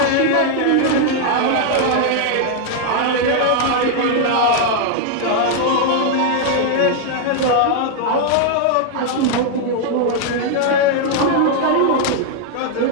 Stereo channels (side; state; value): both; different; correlation 0.00